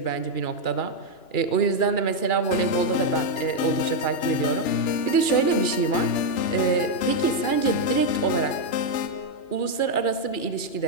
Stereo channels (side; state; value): right; late; 2.3 ms